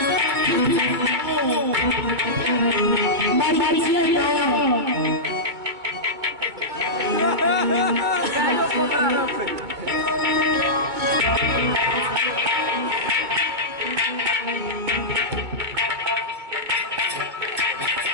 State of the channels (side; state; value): left; late; 2.2 ms